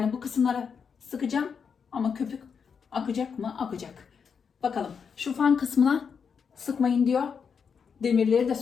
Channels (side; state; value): right; quieter; 6.4 dB